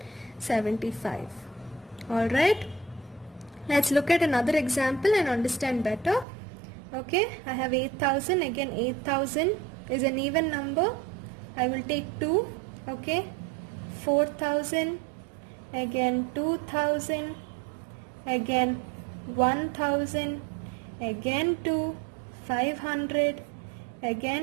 Alright? Let's look at another example and understand better. Okay, I have 8000. Again, 8000 is an even number. I will take 2. Okay, 4000. Again, 2000. Again, 1000. Again 2. 500,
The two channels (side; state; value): left; drops out; at 6.2 s